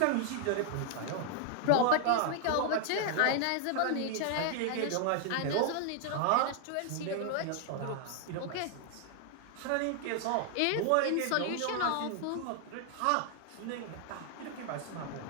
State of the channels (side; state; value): both; different; correlation 0.00